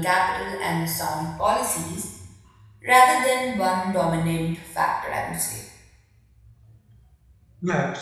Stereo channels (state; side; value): identical; both; correlation 1.00